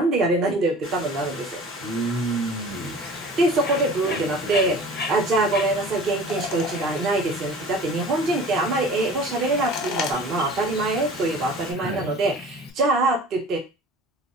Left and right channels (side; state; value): both; normal; correlation 0.42